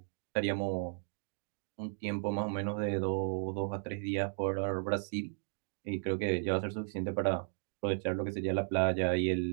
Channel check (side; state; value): left; silent; digital silence